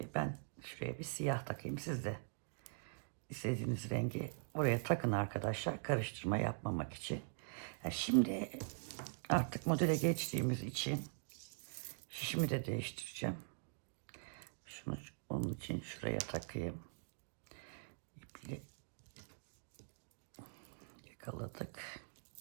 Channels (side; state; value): left; silent; digital silence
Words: ben şuraya bir siyah takayım. Siz de istediğiniz rengi oraya takın arkadaşlar, karıştırma yapmamak için. Şimdi artık modele geçtiğimiz için şişimi de değiştireceğim. Şunu onun için şuraya takayım. İple yakaladık.